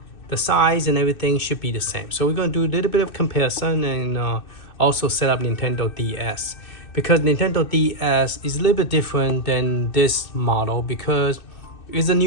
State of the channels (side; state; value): right; late; 2.6 ms